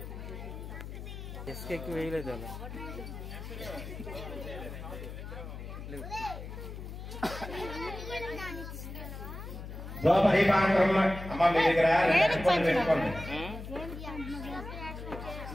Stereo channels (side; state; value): left; noise; hum, 10 dB below the sound